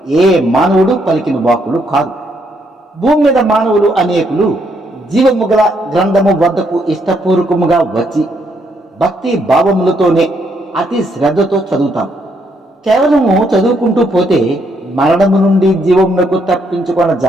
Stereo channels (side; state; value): both; normal; correlation 0.74